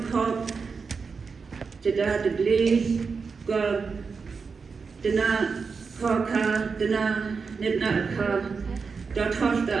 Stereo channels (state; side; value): quieter; left; 5.1 dB